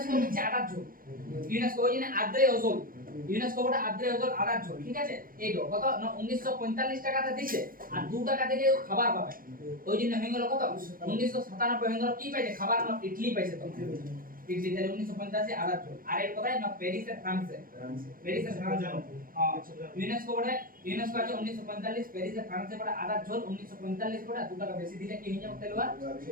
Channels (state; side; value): late; left; 0.41 ms